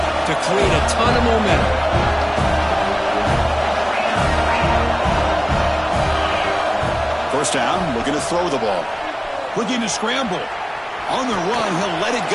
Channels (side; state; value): both; identical; correlation 1.00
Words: to create a ton of momentum. First down, looking to throw the ball. Looking to scramble. On the run, he'll let it